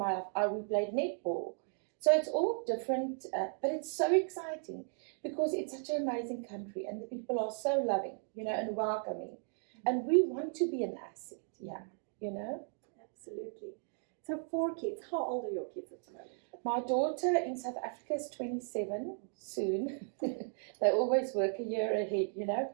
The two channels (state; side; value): silent; left; 54 dB below the other